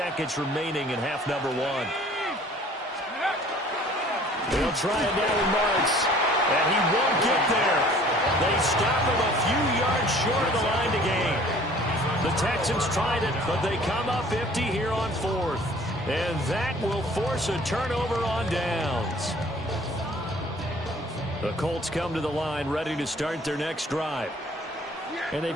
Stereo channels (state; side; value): normal; both; correlation 0.52